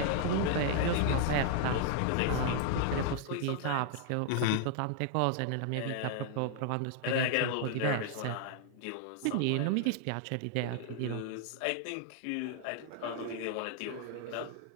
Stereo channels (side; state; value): both; different; correlation -0.01